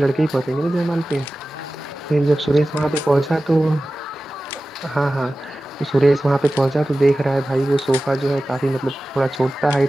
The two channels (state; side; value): normal; both; correlation 0.96